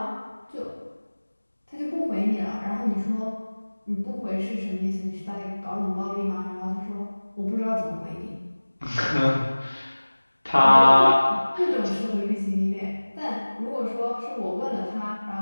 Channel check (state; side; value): inverted; both; correlation -1.00